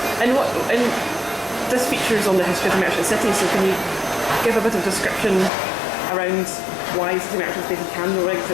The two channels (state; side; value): drops out; right; at 5.5 s